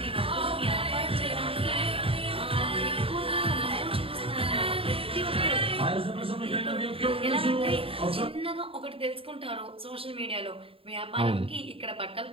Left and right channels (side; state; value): left; late; 0.27 ms